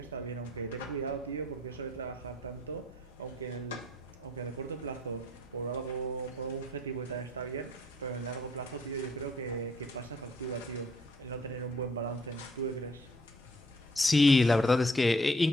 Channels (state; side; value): normal; both; correlation 0.64